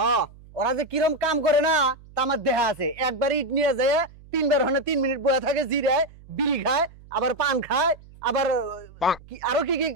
ওরা যে কিরম কাম করে না তা আমার দেহা আছে একবার ইট নিয়ে যায় তিনবার হনে 3 মিনিট বসে থাকে জিরায় বিড়ি খায় আবার পান খায় আবার আরো কি কি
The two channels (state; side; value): noise; right; hum, 22 dB below the sound